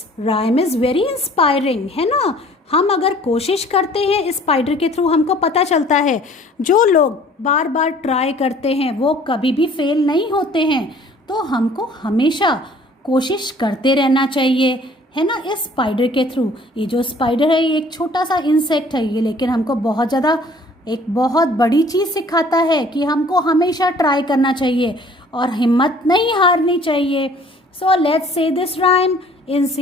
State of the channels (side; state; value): both; normal; correlation 0.54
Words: rhyme is very inspiring, है ना? हम अगर कोशिश करते हैं इस स्पाइडर के थ्रू, हमको पता चलता है जो लोग बार बार ट्राई करते हैं वो कभी भी फेल नहीं होते हैं. तो हमको हमेशा कोशिश करते रहना चाहिए, है ना? इस स्पाइडर के थ्रू, ये जो स्पाइडर है ये एक छोटा सा इंसेक्ट है ये, लेकिन हमको बहुत ज़्यादा एक बहुत बड़ी चीज़ सिखाता है कि हमको हमेशा ट्राई करना चाहिए और हिम्मत नहीं हारनी चाहिए. So let's say this rhyme.